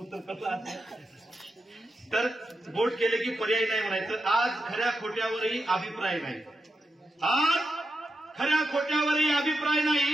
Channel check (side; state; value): both; normal; correlation 0.87